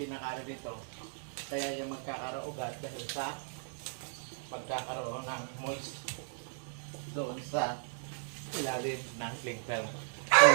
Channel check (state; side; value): silent; left; digital silence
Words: dito, kaya yung magkakaroon dahil sa pagkakaroon ng moist doon sa ilalim ng cling film. So